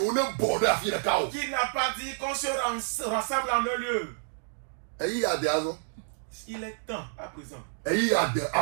Qu'il n'a pas dit qu'on se rassemble en un lieu. Il est temps à présent.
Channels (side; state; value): left; silent; digital silence